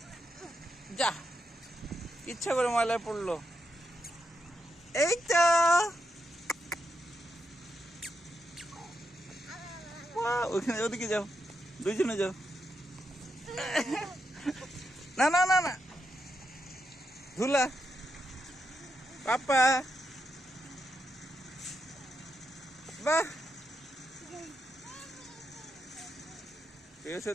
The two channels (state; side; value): normal; both; correlation 0.84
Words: যা, ইচ্ছা করে ময়লায় পড়লো। এই তো ওখানে, ওদিকে যাও, দুইজনে যাও। না না না না, ধুলা পাপা। বাহ,